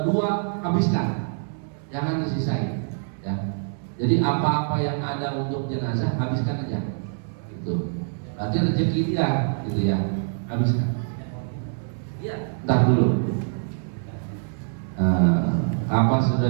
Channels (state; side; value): silent; left; 62 dB below the other